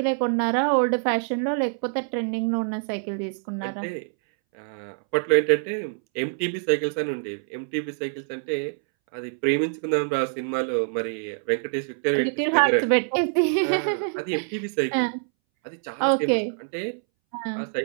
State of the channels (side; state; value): left; silent; 62 dB below the other